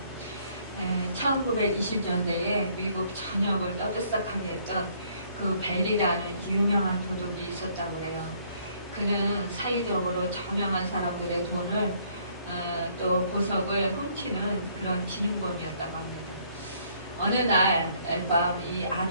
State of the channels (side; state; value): both; inverted; correlation -0.64